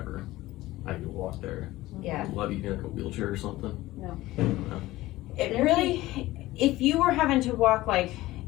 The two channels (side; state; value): right; quieter; 17.4 dB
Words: I need to walk there. Yeah. Love you in like a wheelchair or something. No. It really, if you were having to walk like